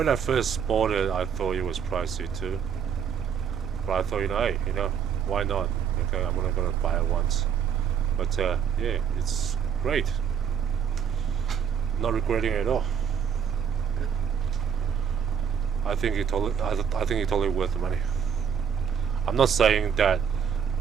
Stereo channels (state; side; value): quieter; left; 7.6 dB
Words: I first bought it, I thought it was pricey too. But I thought, hey, why not? Okay, I'm only gonna buy it once. But yeah, it's great. Not regretting it at all. I think it's totally worth the money. I'm not saying that